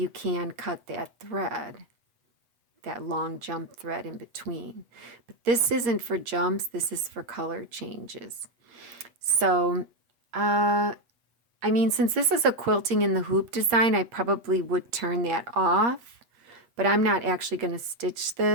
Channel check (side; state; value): left; late; 8.5 ms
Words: can cut that thread, that long jump thread in between. But this isn't for jumps, this is for color changes. So, I mean, since this is a quilting in the hoop design, I probably would turn that off, but I'm not actually going to stitch